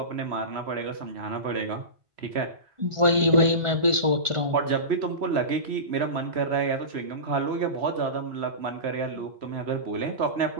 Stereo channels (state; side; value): late; left; 1.4 ms